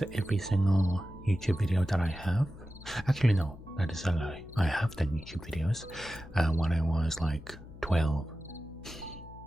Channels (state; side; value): noise; left; hum, 17 dB below the sound